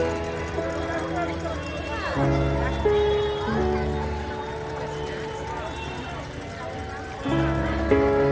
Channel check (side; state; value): both; identical; correlation 1.00